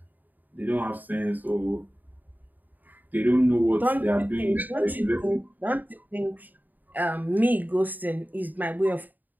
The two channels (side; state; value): left; late; 0.085 ms